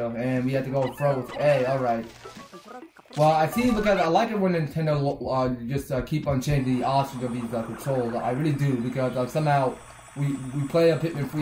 And we have to go throw with A. Alright. Well, I see because I like it when Nintendo just keep on changing the options of these controls. I really do, because somehow we play a Pikmin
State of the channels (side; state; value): both; identical; correlation 1.00